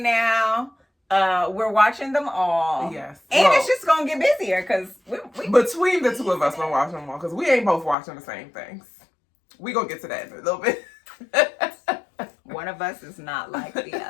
now. We're watching them all. Yes. And it's just going to get busier because we between the two of us, we're watching them all because we ain't both watching the same things. We going to get to that in a little bit. One of us is not like the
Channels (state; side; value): drops out; right; at 8.0 s